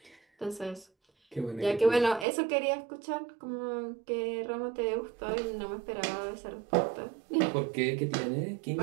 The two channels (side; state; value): left; drops out; at 2.2 s